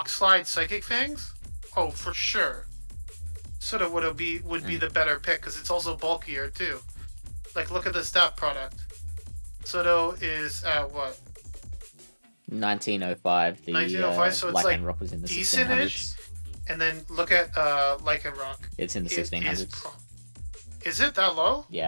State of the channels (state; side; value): inverted; both; correlation -1.00